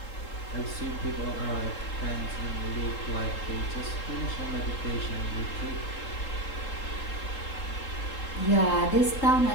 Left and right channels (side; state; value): right; late; 3.8 ms